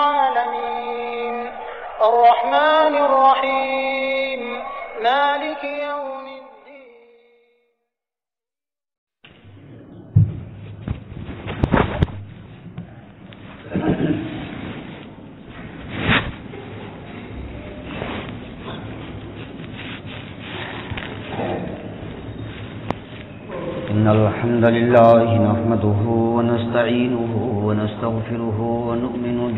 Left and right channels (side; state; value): both; identical; correlation 1.00